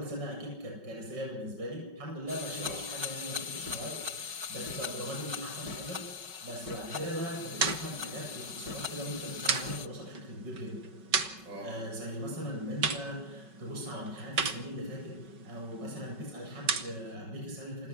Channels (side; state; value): left; late; 5.3 ms